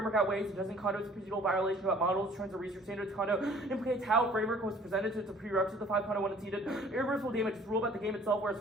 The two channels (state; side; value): normal; both; correlation 0.53